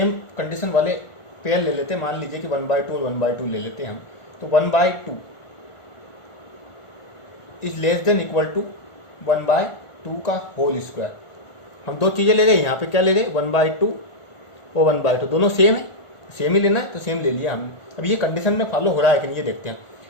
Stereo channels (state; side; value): late; right; 1.4 ms